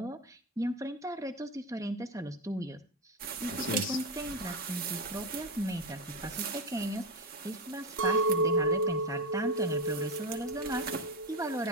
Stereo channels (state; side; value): normal; both; correlation 0.12